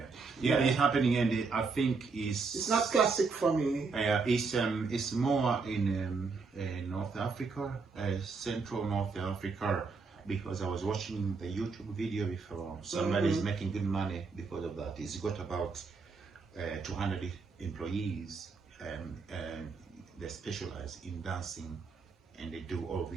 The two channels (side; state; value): left; quieter; 4.5 dB